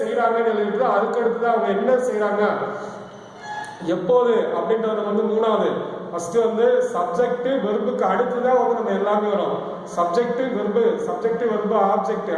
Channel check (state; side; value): identical; both; correlation 1.00